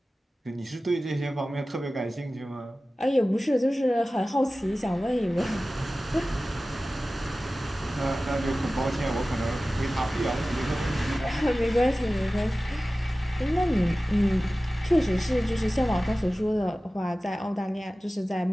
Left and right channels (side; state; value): both; normal; correlation 0.96